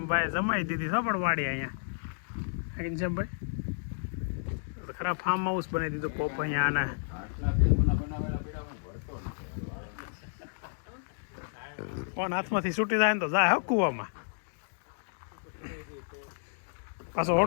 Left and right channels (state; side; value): silent; right; digital silence